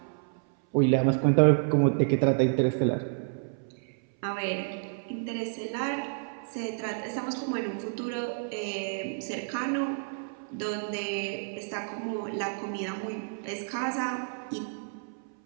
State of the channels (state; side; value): silent; left; 58 dB below the other